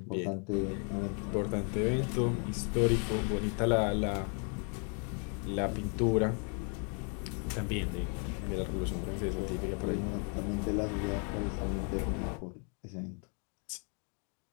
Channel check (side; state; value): right; quieter; 39.5 dB